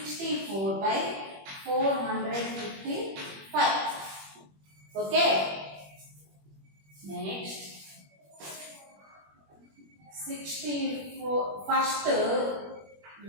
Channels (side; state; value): left; late; 21 ms